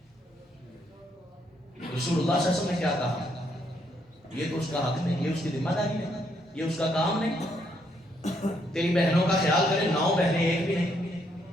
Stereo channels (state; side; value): normal; both; correlation 0.73